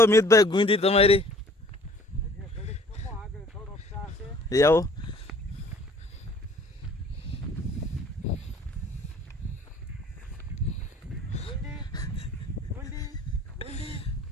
મિતભાઈ ગુંદી તમારી એવું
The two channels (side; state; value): both; normal; correlation 0.53